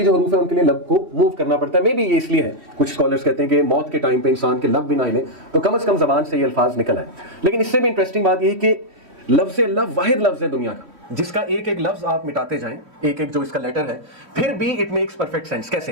جو حروف ہیں ان کے لیے لب کو موو کرنا پڑتا ہے. مے بی یہ اس لیے ہے، کچھ اسکالرس کہتے ہیں کہ موت کے ٹائم پہ انسان کے لب بھی نہ ہلیں تو کم از کم زبان سے یہ الفاظ نکل آئے. لیکن اس سے بھی انٹرسٹنگ بات یہ ہے کہ لفظ اللہ واحد لفظ ہے دنیا کا جس کا ایک ایک لفظ آپ مٹاتے جائیں، ایک ایک جو اس کا لیٹر ہے، پھر بھی اٹ میکس پرفیکٹ سینس. کیسے؟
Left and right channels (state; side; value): late; left; 3.1 ms